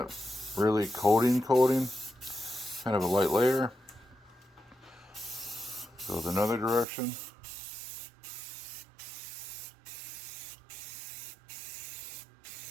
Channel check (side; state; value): left; drops out; at 6.9 s